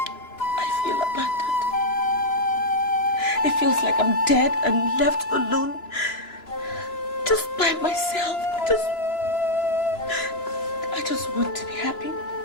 I feel abandoned. It feels like I'm dead and left alone, just by myself. I just want to be happy.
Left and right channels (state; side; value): late; right; 3.0 ms